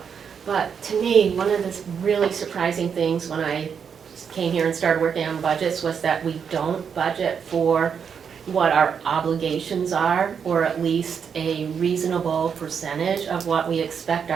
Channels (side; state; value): left; quieter; 7.0 dB